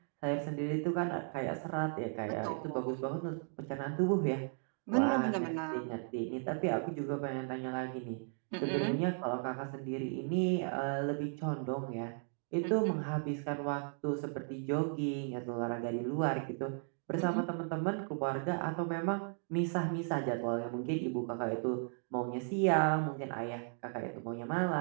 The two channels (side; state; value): left; silent; 54 dB below the other